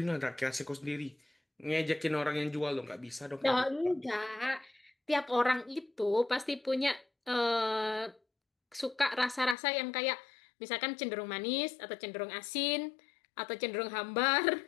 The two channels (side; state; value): right; drops out; at 9.6 s